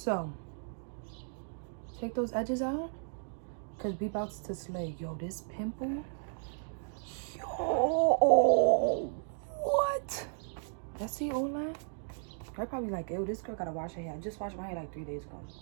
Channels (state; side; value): silent; left; digital silence